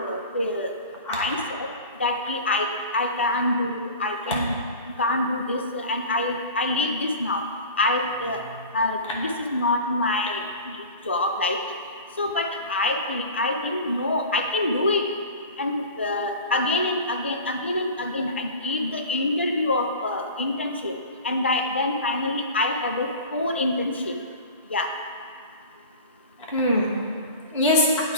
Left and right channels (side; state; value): both; inverted; correlation -0.36